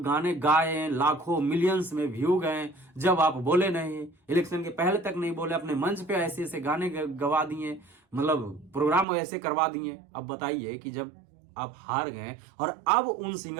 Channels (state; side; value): drops out; left; at 9.1 s